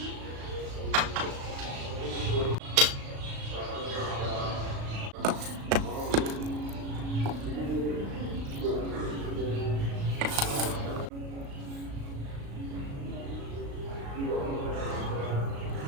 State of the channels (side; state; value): left; late; 36 ms